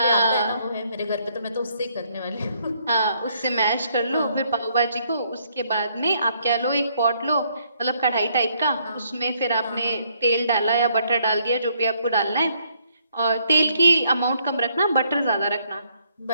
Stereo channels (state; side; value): inverted; both; correlation -0.70